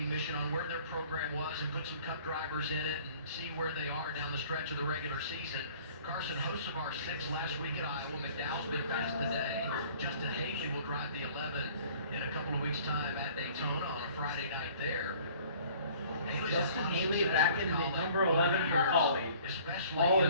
mission on where their program was and put some cup drivers in it and see where they are down the stretch of the regular season. Carson Hocevar 6 last week at Iowa. McDowell's been fast today. Justin Haley will drive the 11 in a couple of weeks' time at Daytona on a Friday night there. Justin Haley back in the number 11 for Collie. All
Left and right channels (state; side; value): inverted; both; correlation -0.52